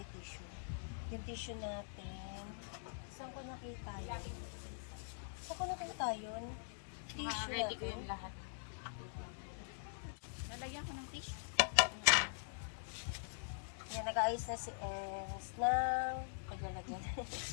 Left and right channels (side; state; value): right; silent; digital silence